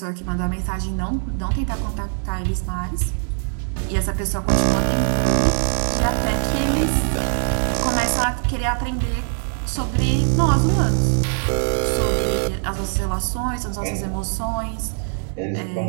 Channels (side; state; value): left; silent; 56 dB below the other